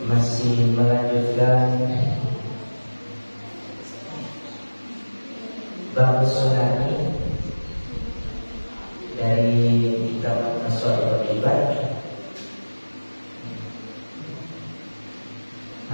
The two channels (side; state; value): both; inverted; correlation -1.00